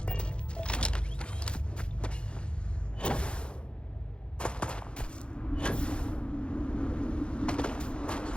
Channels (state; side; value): late; right; 0.055 ms